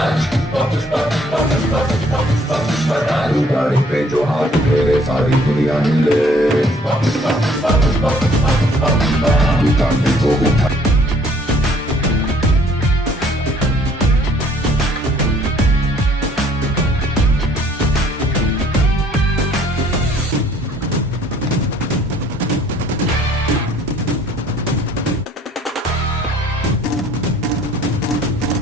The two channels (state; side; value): normal; both; correlation 0.60